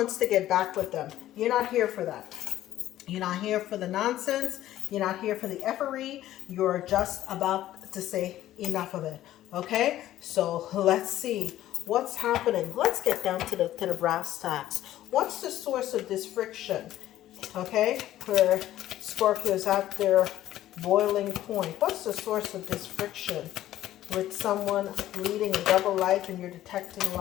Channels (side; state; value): right; quieter; 13.6 dB